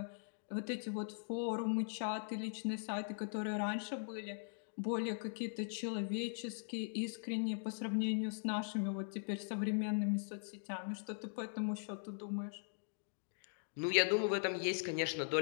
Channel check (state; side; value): silent; right; digital silence